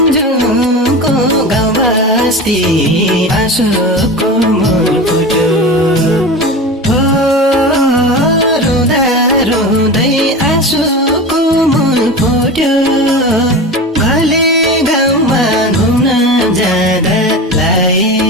गाउँ बस्ती आँसुको मूल फुट्यो हो रुँदा रुँदै आँसुको मूल फुट्यो भले गाउँमा घुम्न जाँदा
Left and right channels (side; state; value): both; normal; correlation 0.29